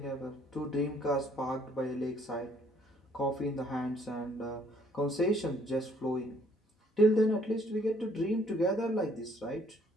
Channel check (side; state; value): both; normal; correlation 0.63